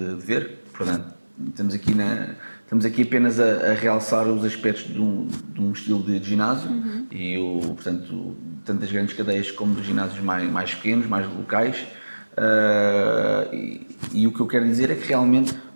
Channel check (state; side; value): inverted; both; correlation -1.00